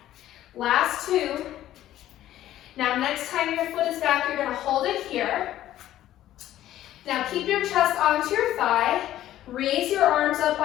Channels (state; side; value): quieter; right; 13.2 dB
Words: Last 2. Now next time your foot is back, you're going to hold it here. Now keep your chest onto your thigh. Raise your arms up